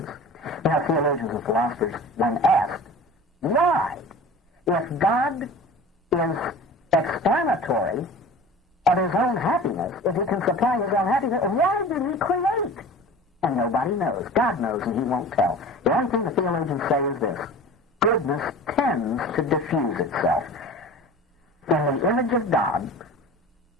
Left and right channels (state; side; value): normal; both; correlation 0.39